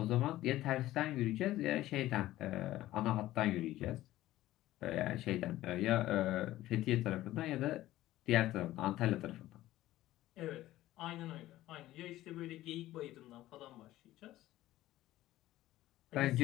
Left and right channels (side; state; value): right; quieter; 15.4 dB